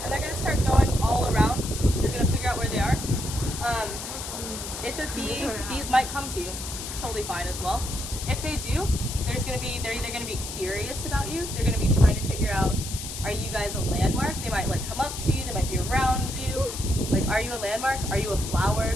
and they're gonna start going all around. They're gonna figure out where they are. If a bees might come to you, totally fine as well. If they do, they're either gonna be curious about you. They're gonna be trying to figure out, are you guys a landmark? They might like come up to you. They might be around you. Like, are you a landmark? Are you a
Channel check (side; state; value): left; noise; hiss, 8 dB below the sound